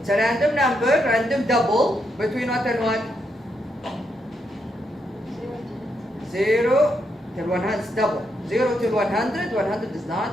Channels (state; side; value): normal; both; correlation 0.80